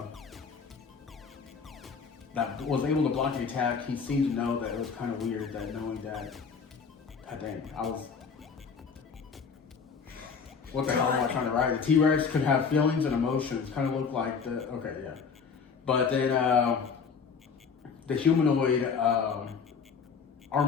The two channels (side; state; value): right; quieter; 5.8 dB